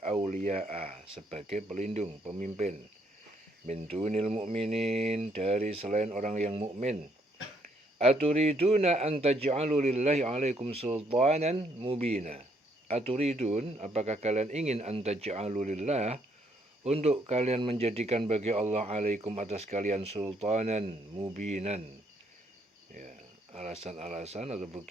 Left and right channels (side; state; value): both; normal; correlation 0.70